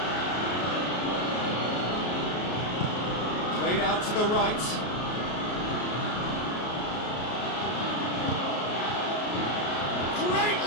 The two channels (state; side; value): late; right; 33 ms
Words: Played out to the right. Great